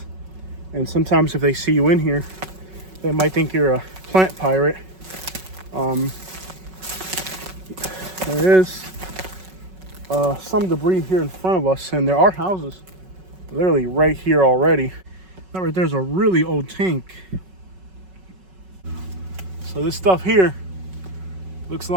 And sometimes if they see you in here, they might think you're a plant pirate. There is some debris here in front of us, and there are houses literally right here already. That right there's a really old tank. So this stuff here looks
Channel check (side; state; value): left; late; 5.4 ms